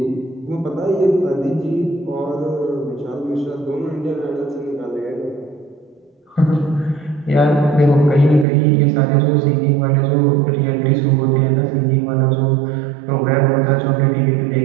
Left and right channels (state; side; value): drops out; left; at 8.5 s